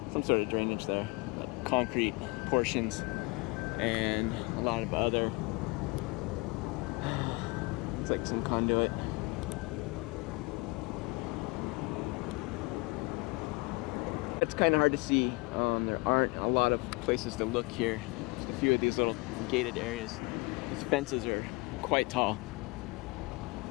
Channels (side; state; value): right; quieter; 27.1 dB